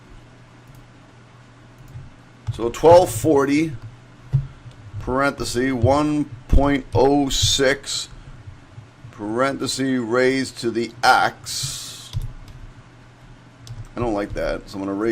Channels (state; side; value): identical; both; correlation 1.00